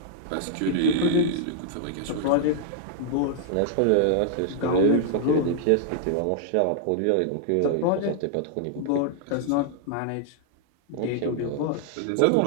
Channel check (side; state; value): both; different; correlation -0.01